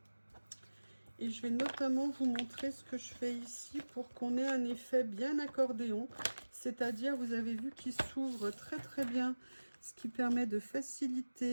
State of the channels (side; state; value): both; inverted; correlation -1.00